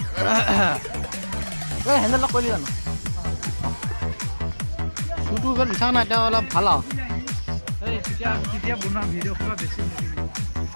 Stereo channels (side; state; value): both; inverted; correlation -1.00